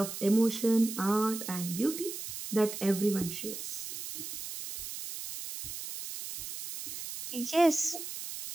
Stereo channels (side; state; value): right; noise; hiss, 8 dB below the sound